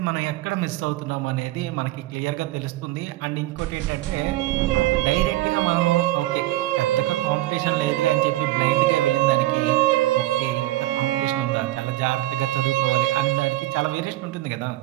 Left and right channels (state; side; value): quieter; left; 16.7 dB